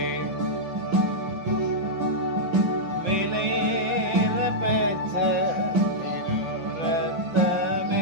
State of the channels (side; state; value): left; late; 6.2 ms